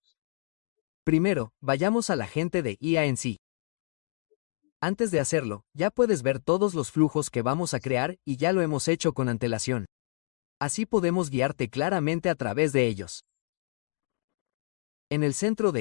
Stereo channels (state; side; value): silent; right; 59 dB below the other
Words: Primero, vayamos al agente de IA en sí. Antes de hacerlo, ya puedes ver todos los flujos que vamos a crear y ya lo hemos hecho con antelación. Así podemos guiarte claramente a través de ellos. En el centro de